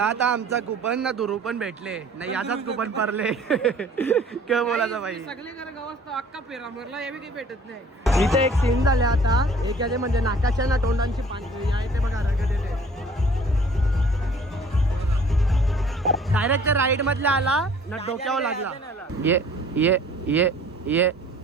आता आमचा कुपन ना दुरू पण भेटले नाही. याचाच कुपन पडले. काय बोलायचं बाई. सगळे घर गावात अक्का पेरा मरला हे काही भेटत नाही. इथे एक सीन झाले आता. एक याचे म्हणजे नाकाच्या ना तोंडांची पाणी आहे ते बघा रगत येते. डायरेक्ट राईड मधला आला ना डोक्यावर लागला. ये ये ये ये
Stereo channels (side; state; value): both; normal; correlation 0.52